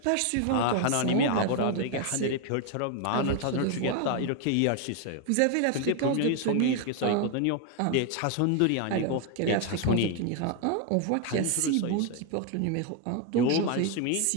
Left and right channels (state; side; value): different; both; correlation 0.01